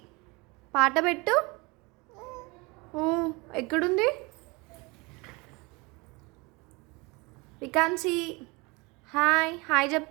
పాట పెట్టు. ఎక్కడుంది వికాన్సి? హాయ్ హాయ్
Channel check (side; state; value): left; quieter; 26.6 dB